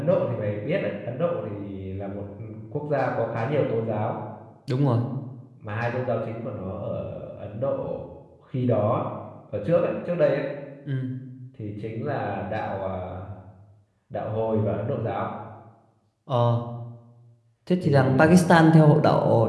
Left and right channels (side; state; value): both; identical; correlation 1.00